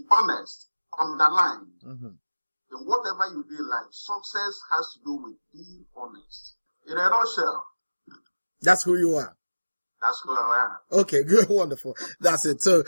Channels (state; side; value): inverted; both; correlation -1.00